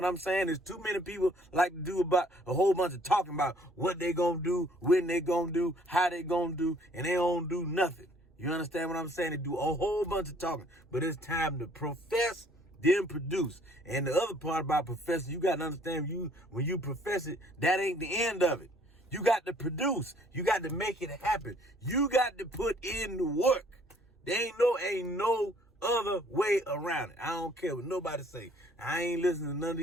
I'm saying? There's too many people like to do about a whole bunch of talking about what they gonna do, when they gonna do, how they gonna do, and they don't do nothing. You understand what I'm saying? They do a whole bunch of talking, but it's time to profess, then produce. And the other part about professing, you got to understand, when you profess it, that ain't the end of it. You got to produce. You got to make it happen. You got to put in the work. There ain't no other way around it. I don't care what nobody say. I ain't listening to none of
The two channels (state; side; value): normal; both; correlation 0.60